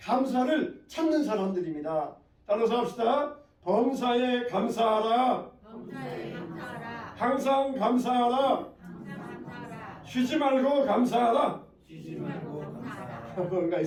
찾는 사람들입니다. 따라서 합시다. 범사에 감사하라. 범사에 감사하라. 항상 감사하라. 항상 감사하라. 쉬지 말고 감사하라. 쉬지 말고 감사하라. 뭔가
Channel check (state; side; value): identical; both; correlation 1.00